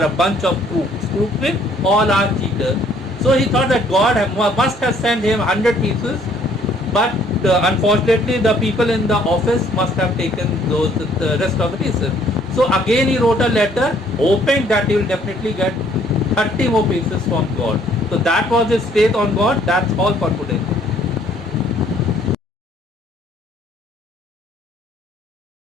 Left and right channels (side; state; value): both; normal; correlation 0.62